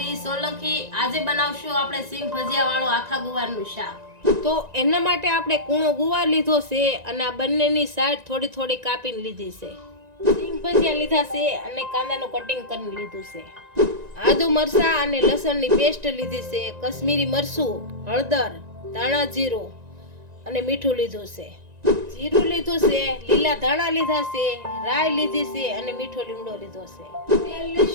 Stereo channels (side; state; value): left; late; 1.9 ms